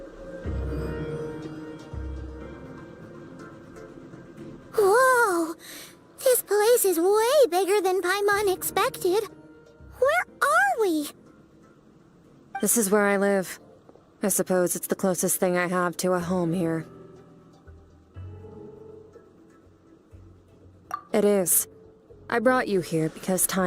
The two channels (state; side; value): identical; both; correlation 1.00